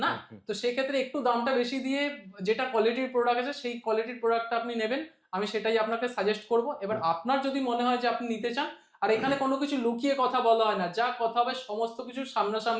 না, তো সেক্ষেত্রে একটু দামটা বেশি দিয়ে যেটা কোয়ালিটির প্রোডাক্ট আছে সেই কোয়ালিটির প্রোডাক্টটা আপনি নেবেন, আমি সেটাই আপনাকে সাজেস্ট করব। এবার আপনার যদি মনে হয় যে আপনি নিতে চান, আর এখানে কোনো কিছু লুকিয়ে কথা বলা হয় না, যা কথা হবে সমস্ত কিছু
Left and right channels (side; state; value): both; identical; correlation 1.00